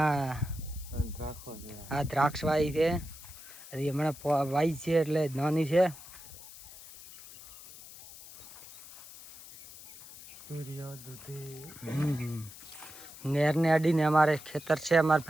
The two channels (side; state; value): left; noise; hiss, 17 dB below the sound